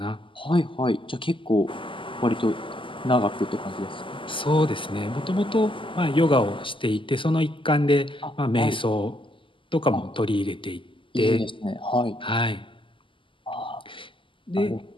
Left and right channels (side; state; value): right; late; 0.25 ms